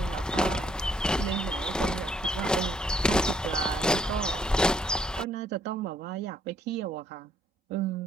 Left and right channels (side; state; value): both; normal; correlation 0.68